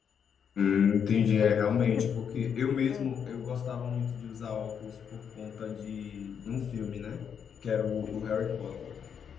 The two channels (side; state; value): right; quieter; 7.5 dB